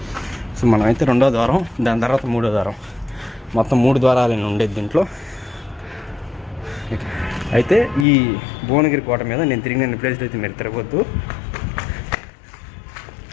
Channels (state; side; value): drops out; right; at 8.1 s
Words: సో మనమైతే 2వ ద్వారం, దాని తర్వాత 3వ ద్వారం, మొత్తం 3 ద్వారాలు ఉండేది దీంట్లో. అయితే ఈ భువనగిరి కోట మీద నేను తిరిగిన ప్లేస్లో అయితే మీరు తిరగొద్దు.